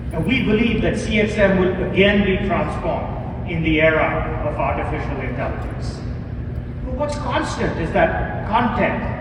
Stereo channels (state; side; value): identical; both; correlation 1.00